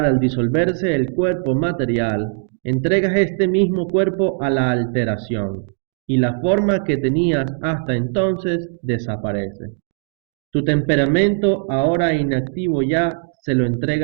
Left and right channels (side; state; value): left; silent; digital silence